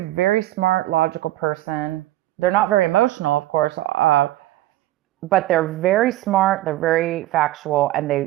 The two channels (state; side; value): quieter; left; 15.7 dB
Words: smart, logical person. They're not very emotional, of course, but they're very smart. They're very factual,